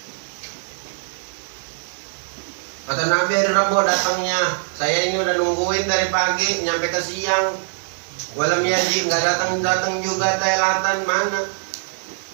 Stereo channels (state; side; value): silent; left; 63 dB below the other